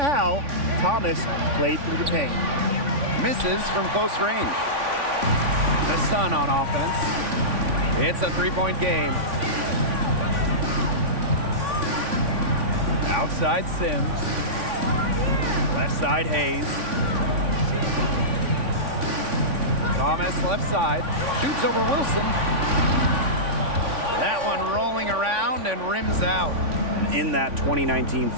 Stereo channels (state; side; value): late; left; 3.5 ms